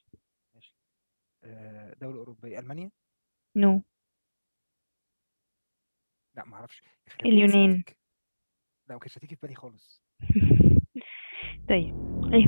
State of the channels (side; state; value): both; inverted; correlation -1.00